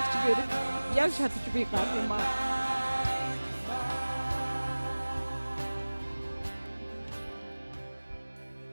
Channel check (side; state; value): both; inverted; correlation -1.00